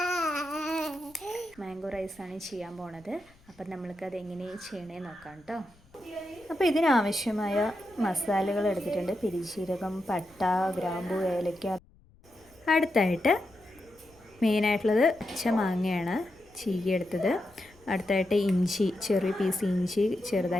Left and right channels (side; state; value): left; noise; rumble, 29 dB below the sound